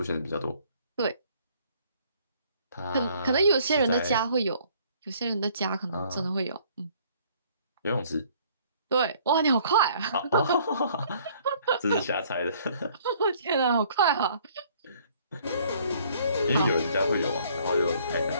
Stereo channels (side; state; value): both; inverted; correlation -0.60